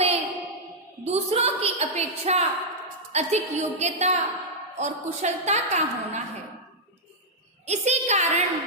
दूसरों की अपेक्षा अधिक योग्यता और कुशलता का होना है। इसी कारण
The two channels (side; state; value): both; normal; correlation -0.06